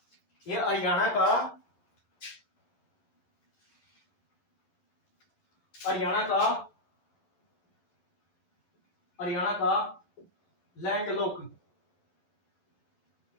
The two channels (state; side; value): late; right; 12 ms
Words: ये हरियाणा का, हरियाणा का, हरियाणा का लैंडलॉक,